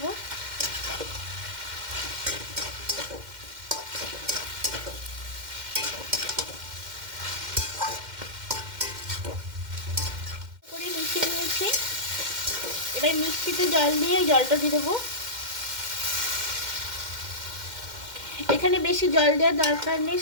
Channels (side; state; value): left; late; 2.1 ms